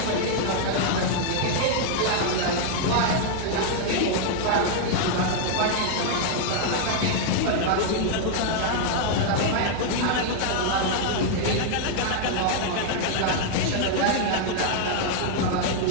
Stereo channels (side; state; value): both; different; correlation 0.00